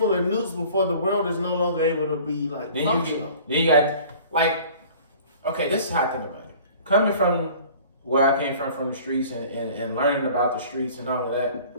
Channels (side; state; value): both; inverted; correlation -0.48